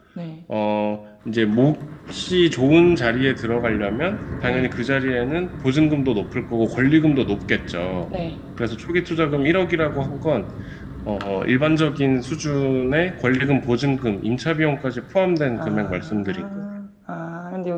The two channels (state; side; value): identical; both; correlation 1.00